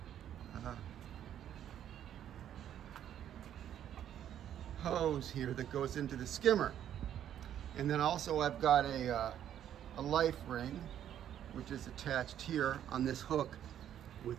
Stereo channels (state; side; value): quieter; left; 10.4 dB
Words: hose here that goes into the skimmer. And then also I've got a life ring, which is attached here on this hook